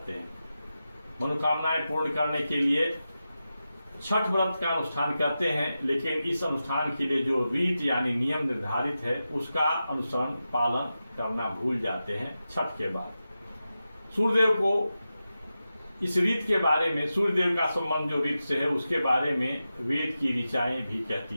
हैं। मनोकामनाएं पूर्ण करने के लिए छठ व्रत का अनुष्ठान करते हैं, लेकिन इस अनुष्ठान के लिए जो रीत यानी नियम निर्धारित है उसका अनुसरण पालन करना भूल जाते हैं। छठ के बाद सूर्यदेव को इस रीत के बारे में, सूर्यदेव का संबंध जो रीत से है उसके बारे में वेद की ऋचाएं भी कहती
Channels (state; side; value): inverted; both; correlation -0.91